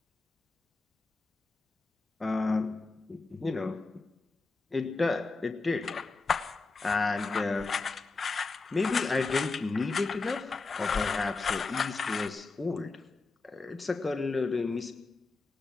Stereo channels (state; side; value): quieter; right; 3.9 dB